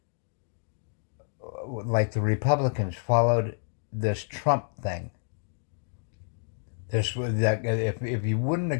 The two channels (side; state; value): right; silent; digital silence